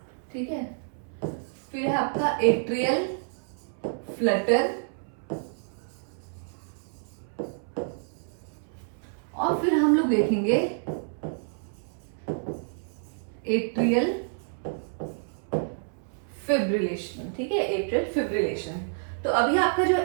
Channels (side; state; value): left; silent; 59 dB below the other